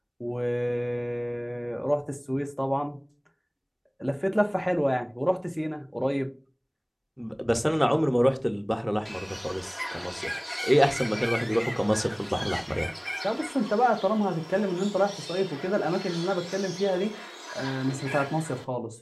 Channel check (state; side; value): identical; both; correlation 1.00